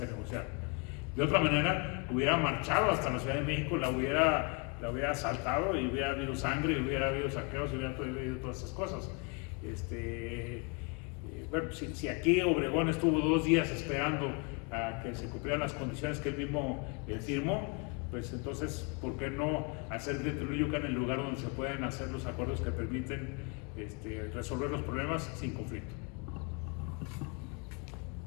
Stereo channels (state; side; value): quieter; right; 32.5 dB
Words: negociaron. De otra manera, hubiera marchado hasta la Ciudad de México, la hubiera asaltado y hubiera habido sangre, y hubiera habido saqueos, y hubiera habido todas esas cosas. Bueno, si aquí Obregón estuvo 2 días esperando a que se cumplieran las condiciones que él mismo firmó, pues entonces, ¿por qué no hacer de Teoloyucan el lugar donde se pueden hacer los acuerdos que permiten resolver los problemas sin conflicto?